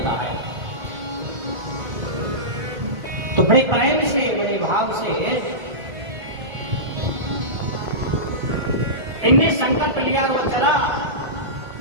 है। तो बड़े प्रेम से, बड़े भाव से इनने संकल्प लिया। वो चला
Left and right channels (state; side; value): late; left; 1.5 ms